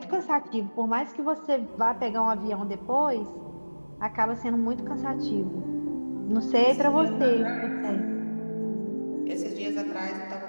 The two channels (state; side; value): inverted; both; correlation -1.00